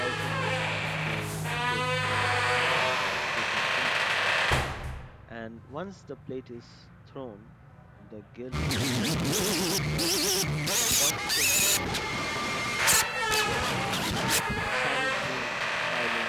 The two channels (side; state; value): both; identical; correlation 1.00